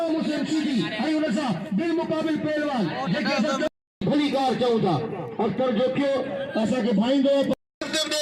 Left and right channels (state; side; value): identical; both; correlation 1.00